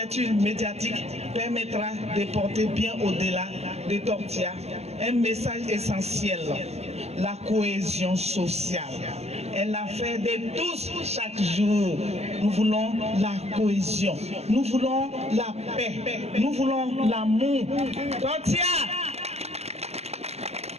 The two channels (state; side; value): late; left; 0.30 ms